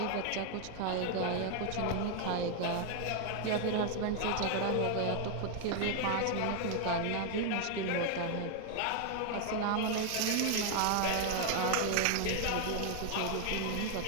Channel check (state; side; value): different; both; correlation 0.00